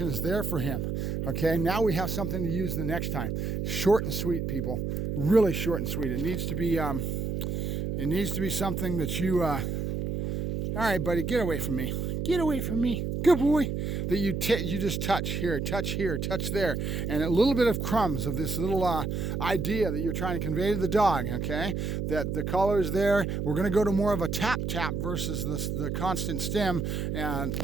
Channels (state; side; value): noise; right; hum, 2 dB below the sound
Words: is there for him, okay? Now we have something to use the next time. Short and sweet, people. Really short and sweet. It needs to be something that you, all right, buddy, get away from me. Get away from me. Good boy. That you just touch here, touch there, and a little bit of crumbs of this little idea that you're trying to convey to the dog, okay? That the collar is there. We're going to go to more of a tap versus the constant stim, and